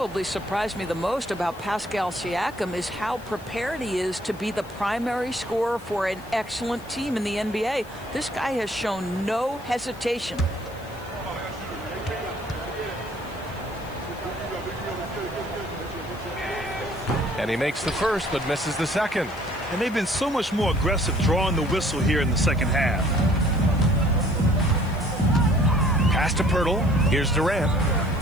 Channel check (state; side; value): noise; left; hiss, 24 dB below the sound